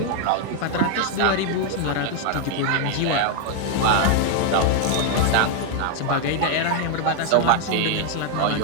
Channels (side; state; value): both; different; correlation 0.00